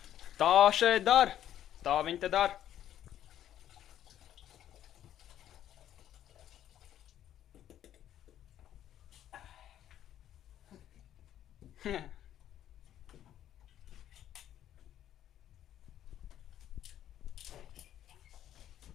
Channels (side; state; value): right; quieter; 11.3 dB